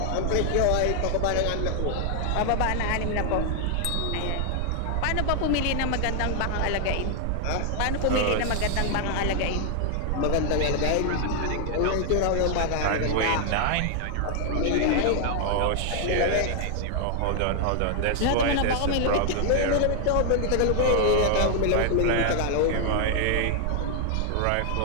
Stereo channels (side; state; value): both; different; correlation 0.00